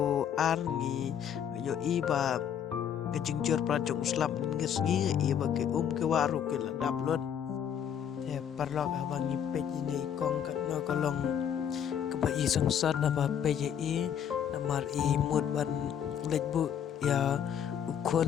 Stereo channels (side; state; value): right; quieter; 8.8 dB